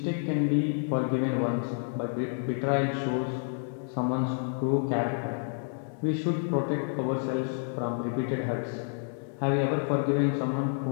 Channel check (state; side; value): silent; right; digital silence